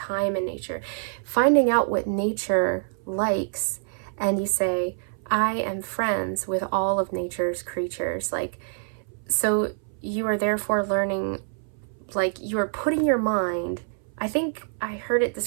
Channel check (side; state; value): left; silent; 60 dB below the other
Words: in nature, finding out what nature likes, and you say, I am friends with all of nature's creatures. Like, so you are therefore learning, like, you are putting your mind, I think I heard it